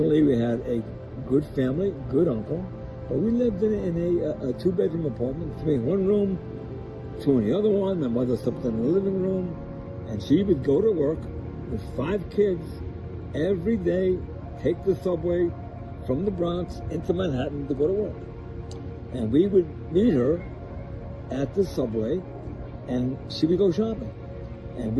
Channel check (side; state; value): both; identical; correlation 1.00